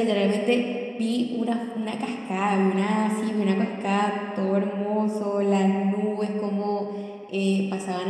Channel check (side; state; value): both; identical; correlation 1.00